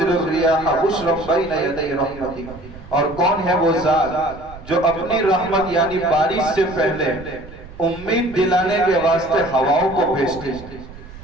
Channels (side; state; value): right; noise; rumble, 17 dB below the sound